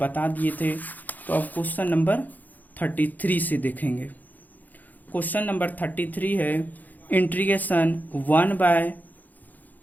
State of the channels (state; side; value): late; right; 0.083 ms